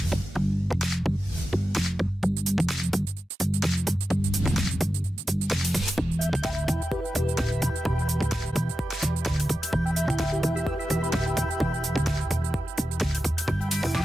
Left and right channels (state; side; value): normal; both; correlation 0.91